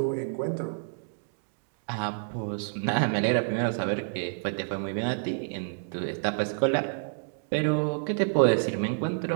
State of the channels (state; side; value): silent; left; digital silence